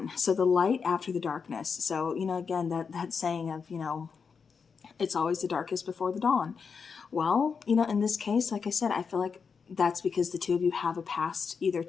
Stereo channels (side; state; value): right; quieter; 5.8 dB